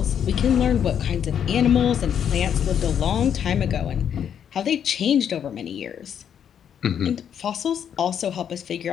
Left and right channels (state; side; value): quieter; right; 8.7 dB